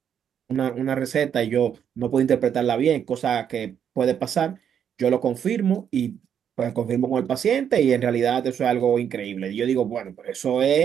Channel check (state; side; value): quieter; left; 8.5 dB